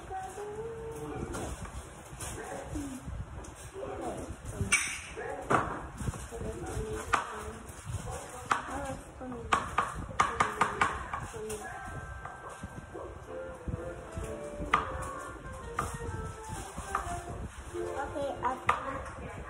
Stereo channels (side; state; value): both; identical; correlation 1.00